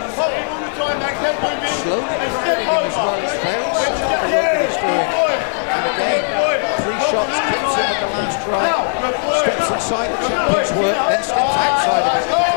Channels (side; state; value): right; silent; digital silence